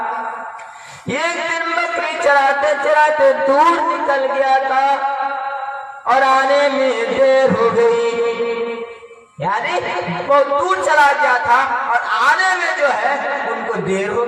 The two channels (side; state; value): both; identical; correlation 1.00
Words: एक दिन बकरी चराते चराते दूर निकल गया था और आने में देर हो गई, यानी बहुत दूर चला गया था और आने में जो है उनको देर हो